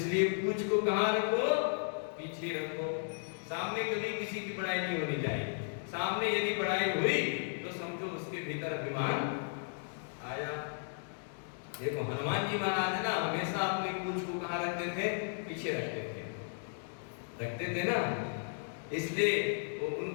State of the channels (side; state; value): right; silent; digital silence